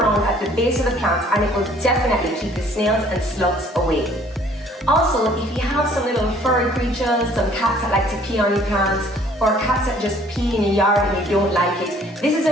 at the base of the plants, and it will definitely keep the snails and slugs away. Also, if you have some little furry creatures, some cats that like to pee on your plants, or cats that just pee in your yard and you don't like it, this is a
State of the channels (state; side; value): normal; both; correlation 0.57